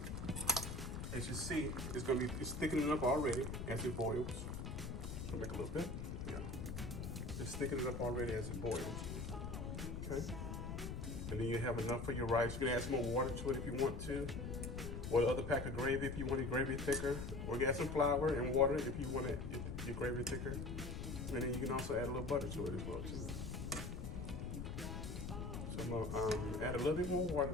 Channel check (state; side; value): noise; left; rumble, 5 dB below the sound